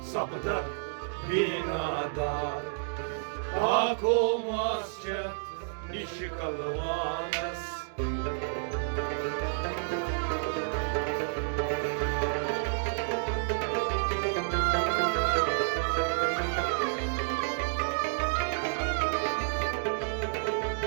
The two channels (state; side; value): silent; left; digital silence